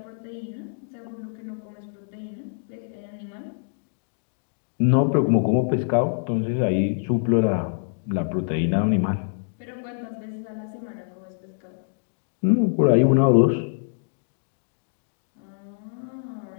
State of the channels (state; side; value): silent; right; digital silence